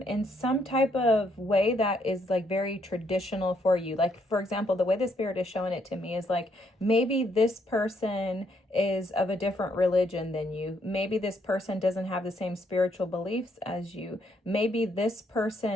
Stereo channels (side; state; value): both; normal; correlation 0.72